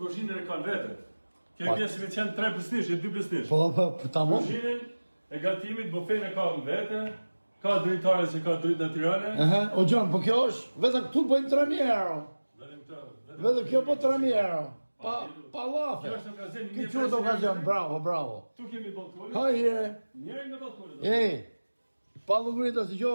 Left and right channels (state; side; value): inverted; both; correlation -1.00